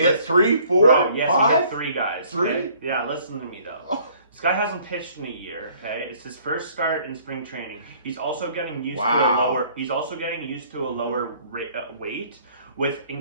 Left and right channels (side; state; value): both; inverted; correlation -0.58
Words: hit 3, 4, Bro, yes, 5? he hit 3 guys. 3? Okay? Yeah, listen to me though. This guy hasn't pitched in a year. Okay, it's his first start in spring training. He's also getting used to a lower. He's also getting used to a lower weight with